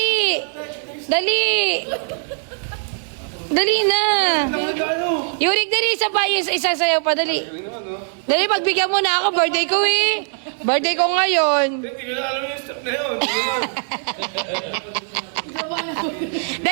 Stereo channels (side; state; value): left; silent; 61 dB below the other